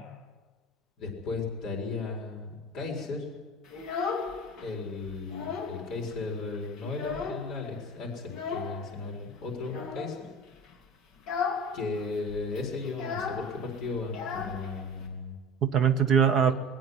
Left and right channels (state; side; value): normal; both; correlation 0.35